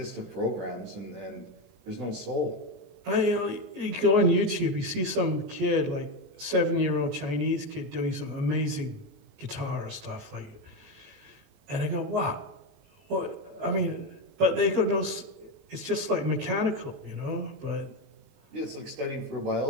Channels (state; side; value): late; left; 20 ms